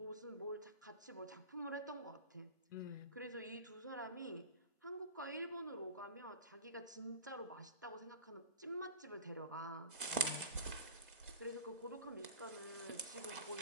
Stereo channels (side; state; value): both; inverted; correlation -0.34